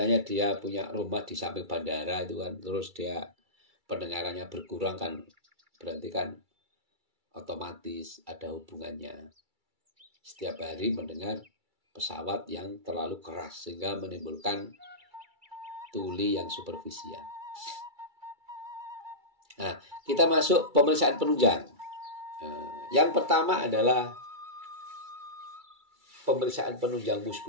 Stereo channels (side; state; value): left; late; 2.3 ms